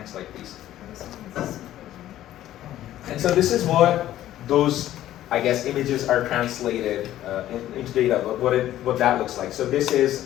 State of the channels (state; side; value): quieter; right; 13.2 dB